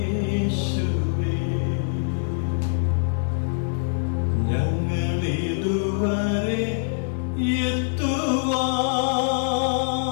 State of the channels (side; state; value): right; silent; 63 dB below the other